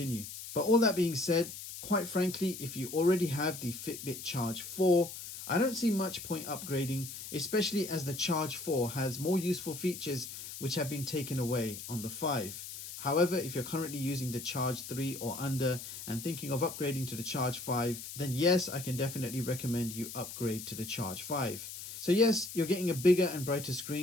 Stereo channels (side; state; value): left; noise; hiss, 10 dB below the sound